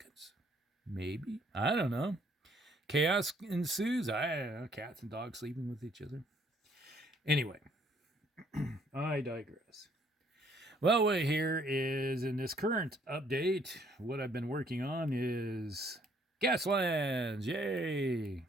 Maybe. I don't know. Chaos ensues. I don't know. Cats and dogs sleeping with each other. Anyway, I digress. Well, what here is in this current update, what I've been working on is Gaslands. Yay!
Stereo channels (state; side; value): normal; both; correlation 0.64